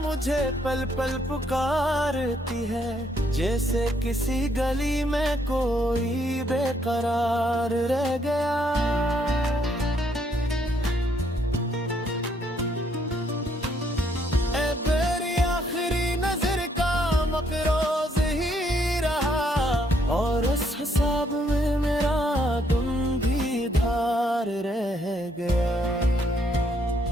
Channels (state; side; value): normal; both; correlation 0.71